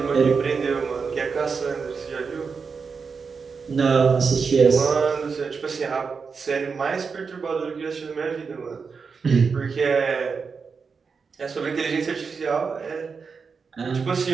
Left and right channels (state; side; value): quieter; left; 5.3 dB